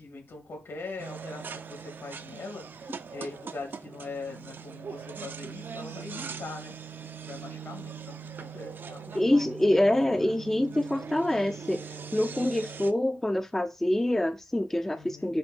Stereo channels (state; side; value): normal; both; correlation 0.95